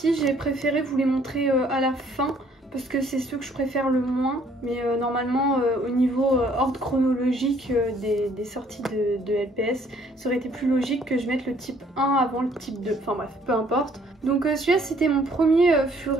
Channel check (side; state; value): both; normal; correlation 0.62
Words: J'ai préféré vous les montrer à la fin, parce que c'est ceux que je préfère le moins. Mais normalement, au niveau ordre chronologique des sorties de LPS, ça aurait été plus logique que je mette le type 1 avant le type 2. Enfin bref, peu importe. Donc celui-là, c'était mon premier